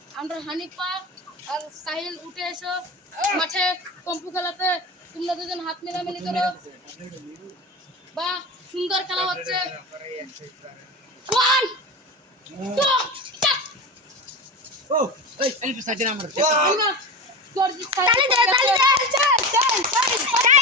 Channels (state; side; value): normal; both; correlation 0.25